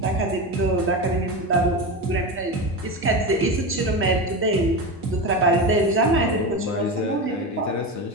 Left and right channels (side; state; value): both; normal; correlation 0.21